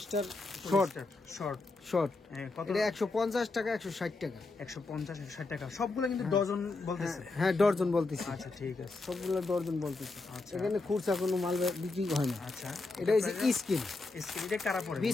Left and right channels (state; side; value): quieter; right; 3.5 dB